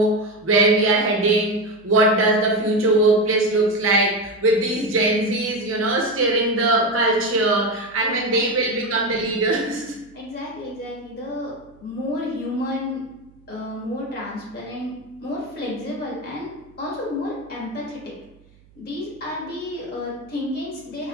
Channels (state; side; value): noise; right; hum, 29 dB below the sound